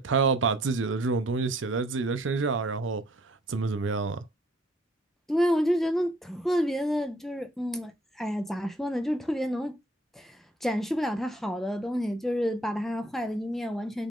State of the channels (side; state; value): both; normal; correlation 0.62